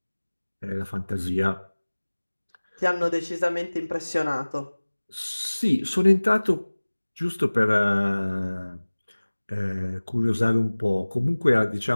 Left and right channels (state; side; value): inverted; both; correlation -1.00